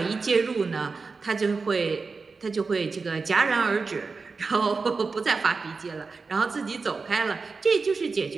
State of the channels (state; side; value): quieter; left; 4.4 dB